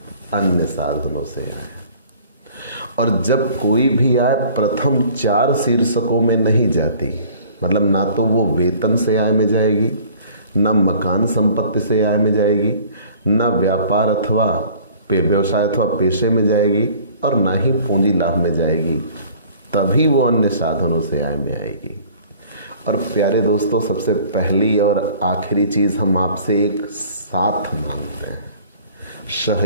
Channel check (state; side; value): inverted; both; correlation -0.51